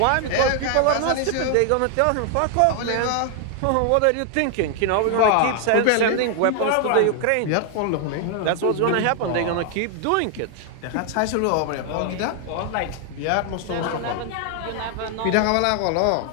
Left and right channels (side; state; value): both; different; correlation 0.00